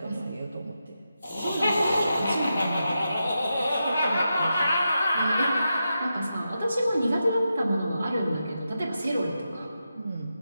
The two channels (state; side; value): inverted; both; correlation -0.88